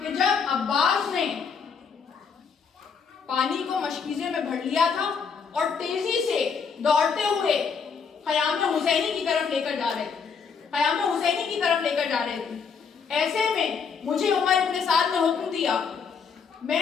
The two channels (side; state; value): right; quieter; 6.0 dB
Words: جب عباس نے پانی کو مشکیزے میں بھر لیا تھا اور تیزی سے دوڑتے ہوئے خیام حسینی کی طرف لے کر جا رہے تھے. ایسے میں مجھے عمر ابن سعد نے حکم دیا,